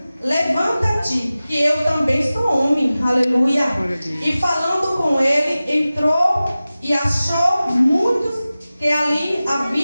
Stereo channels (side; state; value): both; inverted; correlation -0.96